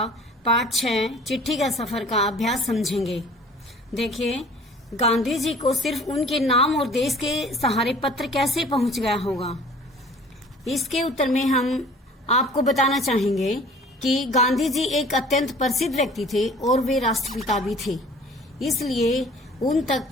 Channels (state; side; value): normal; both; correlation 0.49